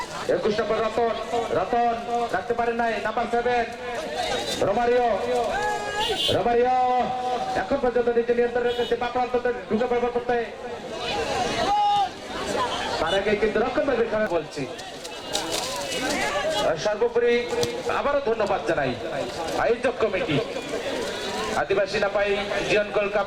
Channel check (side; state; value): both; identical; correlation 1.00